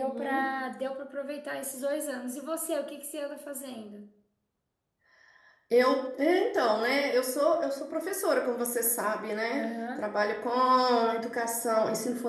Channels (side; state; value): both; identical; correlation 1.00